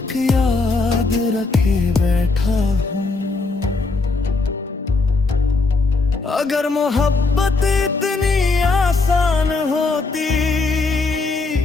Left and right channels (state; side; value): quieter; right; 3.8 dB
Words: याद रखे बैठा हूँ। अगर मोहब्बत इतनी आसान होती